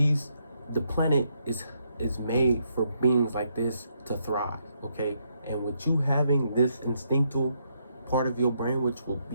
planet is made for beings like this to thrive, okay? And with you having this instinctual part of your brain, which will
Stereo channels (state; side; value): inverted; both; correlation -0.76